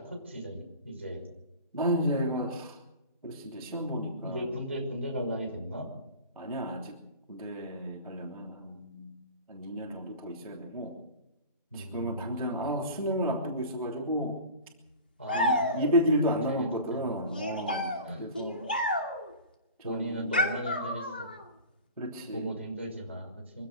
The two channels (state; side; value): inverted; both; correlation -0.37